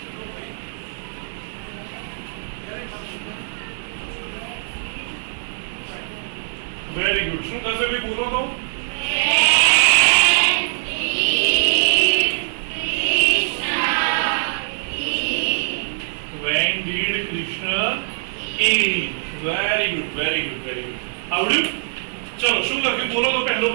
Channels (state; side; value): silent; left; digital silence